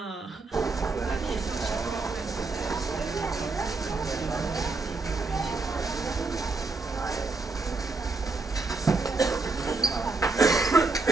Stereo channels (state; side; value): quieter; left; 3.8 dB